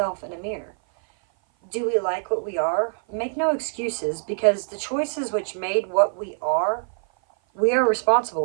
in a mirror? Do we like what we are? Make no excuses, because the choices which made what we are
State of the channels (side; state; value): left; silent; 56 dB below the other